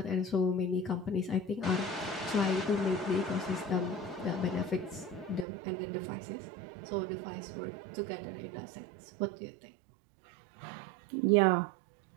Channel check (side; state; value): left; drops out; at 5.5 s